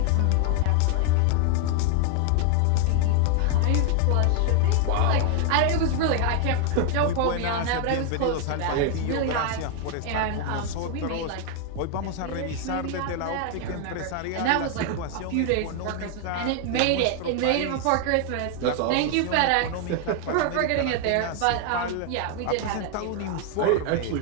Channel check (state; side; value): different; both; correlation 0.00